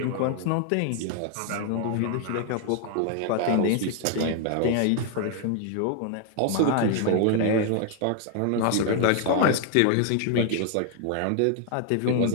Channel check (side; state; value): both; different; correlation 0.00